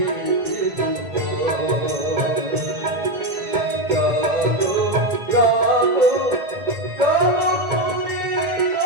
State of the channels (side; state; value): left; late; 2.1 ms